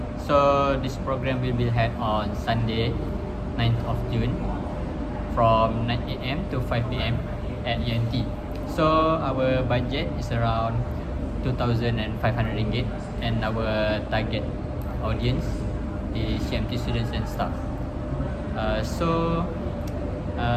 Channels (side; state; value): both; identical; correlation 1.00